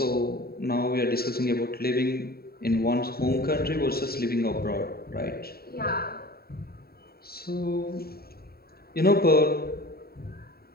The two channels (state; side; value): late; right; 0.45 ms